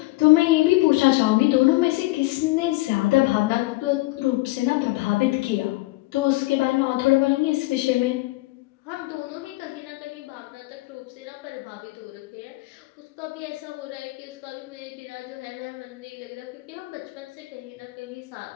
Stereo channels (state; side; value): quieter; right; 21.2 dB